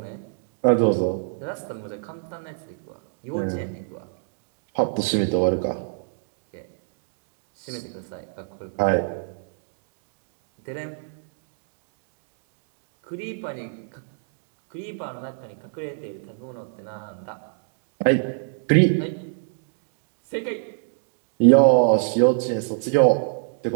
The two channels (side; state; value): left; silent; digital silence